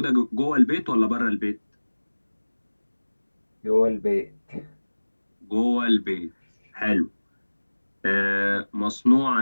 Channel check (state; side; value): inverted; both; correlation -1.00